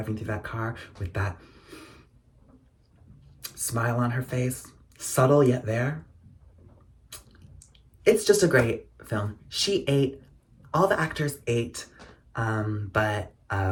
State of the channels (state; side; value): identical; both; correlation 1.00